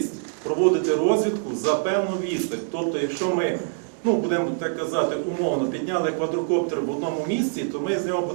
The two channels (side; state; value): left; silent; digital silence